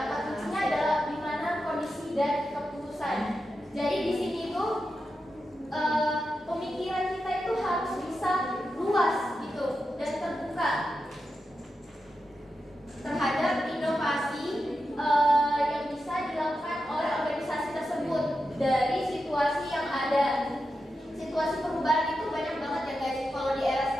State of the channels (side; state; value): both; normal; correlation 0.89